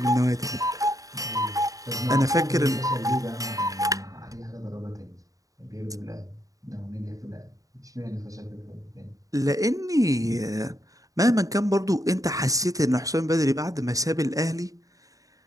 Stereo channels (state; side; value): late; left; 0.17 ms